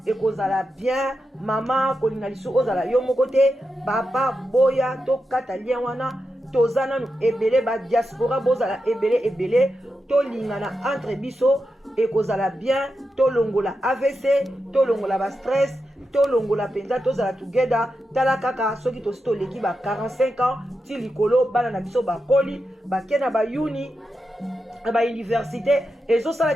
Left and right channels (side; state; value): both; normal; correlation 0.88